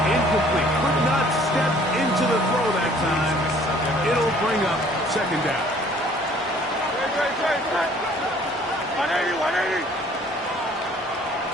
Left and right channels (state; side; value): normal; both; correlation 0.56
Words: incomplete. Could not step into the throw that time. It'll bring up second down. 180.